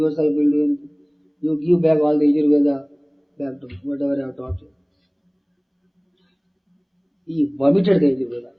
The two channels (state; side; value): identical; both; correlation 1.00